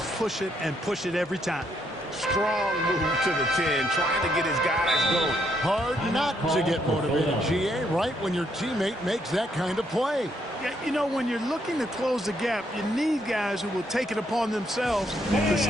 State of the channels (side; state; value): both; normal; correlation 0.74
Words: push it and push it every time. Strong move to the 10, trying to get his guys going. Hard not to get motivated, GA, right when your teammate makes that kind of play. Yeah, you know, when you're looking to close the gap, you need guys who will take it upon themselves to